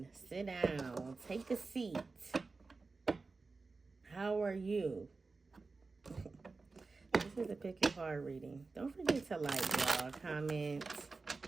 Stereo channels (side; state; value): left; quieter; 4.0 dB